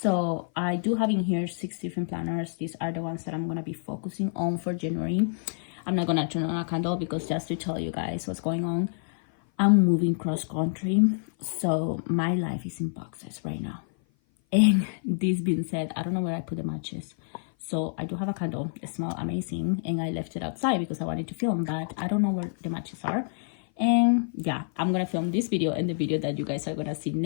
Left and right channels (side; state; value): right; silent; 55 dB below the other